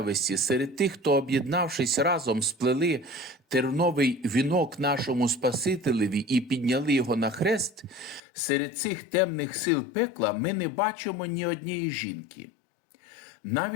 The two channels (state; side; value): drops out; right; at 8.2 s